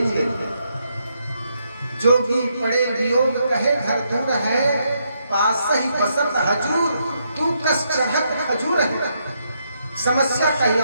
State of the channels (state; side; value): inverted; both; correlation -0.78